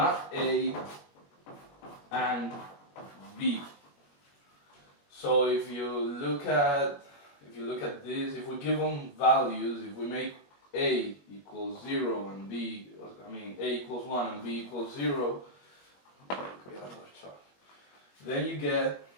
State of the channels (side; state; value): right; late; 21 ms